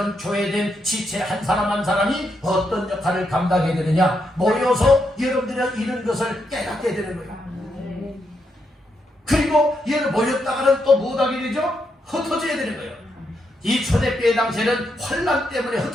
교회된 지체 한 사람 한 사람이 어떤 역할을 감당해야 되느냐, 모여서 여러분들이 이런 것을 깨닫게 되는 거예요. 그리고 얘를 모였다가는 또 못하게 되죠? 흩어져야 되는 거예요. 이 초대교회 당시에는 환난 때문에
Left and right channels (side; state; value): both; normal; correlation 0.80